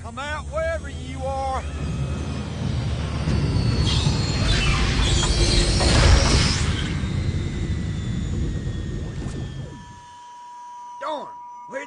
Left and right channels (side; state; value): both; identical; correlation 1.00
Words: Come out wherever you are. Darn,